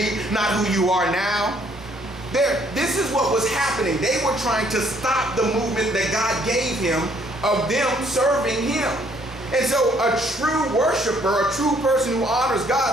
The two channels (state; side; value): normal; both; correlation 0.65